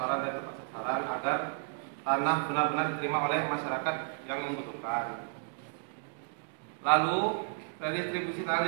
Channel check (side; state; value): left; silent; digital silence